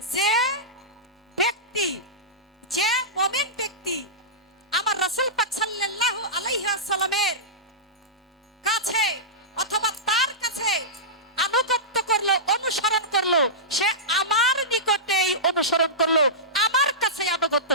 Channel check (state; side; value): normal; both; correlation -0.16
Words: যে ব্যক্তি, যে মুমিন ব্যক্তি আমার রাসূল পাক সাল্লাল্লাহু আলাইহি ওয়াসাল্লামের কাছে অথবা তার কাছে আনুগত্য করলো, অনুসরণ করলো, সে আমার নিকটেই অনুসরণ করলো, আমার কাছে আনুগত্য